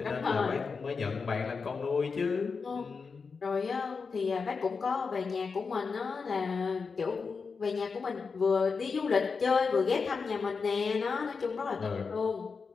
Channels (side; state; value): right; quieter; 5.0 dB